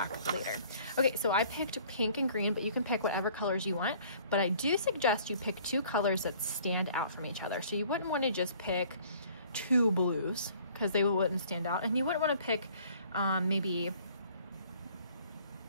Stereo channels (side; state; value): both; inverted; correlation -0.55